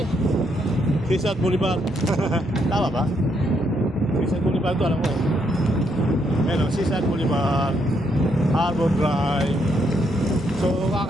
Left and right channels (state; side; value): normal; both; correlation 0.75